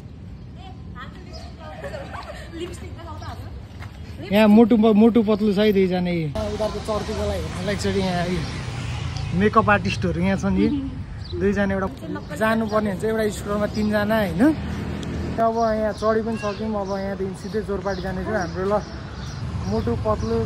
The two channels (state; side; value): identical; both; correlation 1.00